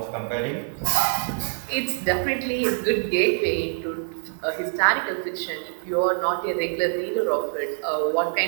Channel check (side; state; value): left; silent; 62 dB below the other